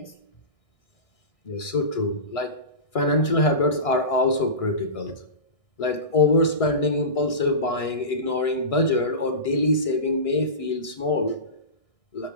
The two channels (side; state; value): right; late; 1.6 ms